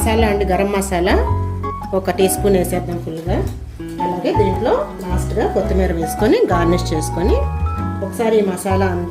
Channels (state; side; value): identical; both; correlation 1.00